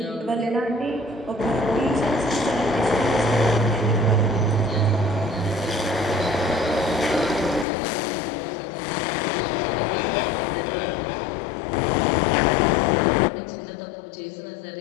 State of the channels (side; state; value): right; drops out; at 7.7 s